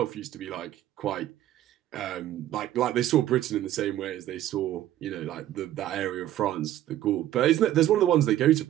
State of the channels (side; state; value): left; quieter; 13.0 dB